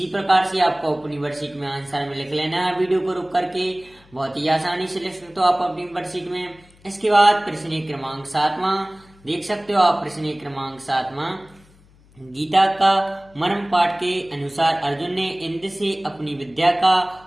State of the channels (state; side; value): noise; left; hum, 28 dB below the sound